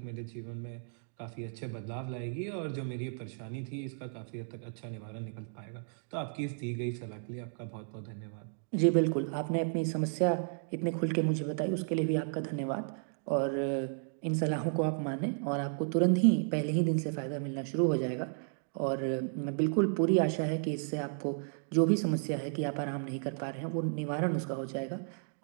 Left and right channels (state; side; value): silent; left; digital silence